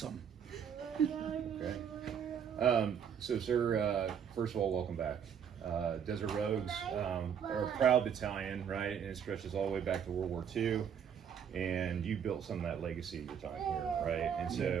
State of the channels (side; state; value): left; quieter; 8.0 dB